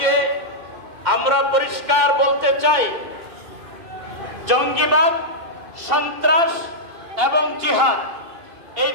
আমরা পরিষ্কার বলতে চাই, জঙ্গিবাদ, সন্ত্রাস এবং জিহাদ এই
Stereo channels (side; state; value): left; late; 2.5 ms